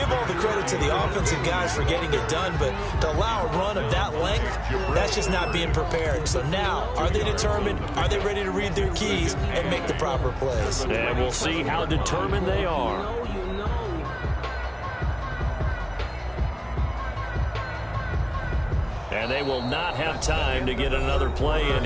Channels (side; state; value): both; identical; correlation 1.00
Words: all the credit to the offensive guys for getting it done, but to allow a run of that length, that's just not being prepared. So now, are they determined? Are they ready to read their keys and make the proper plays? And we'll see how determined they are. And they will not have time to get another play in